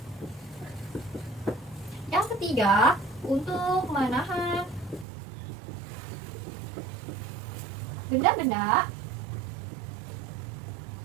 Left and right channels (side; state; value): left; drops out; at 5.1 s